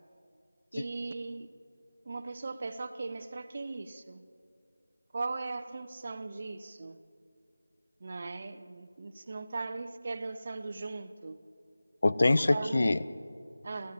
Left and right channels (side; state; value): both; inverted; correlation -0.96